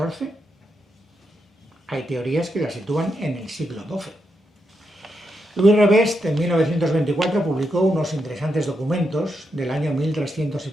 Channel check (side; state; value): both; normal; correlation 0.83